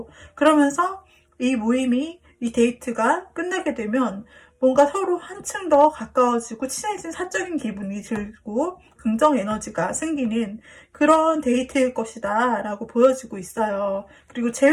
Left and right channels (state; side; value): identical; both; correlation 1.00